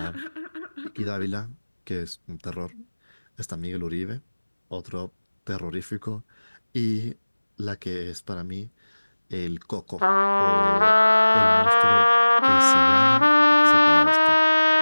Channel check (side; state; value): both; inverted; correlation -1.00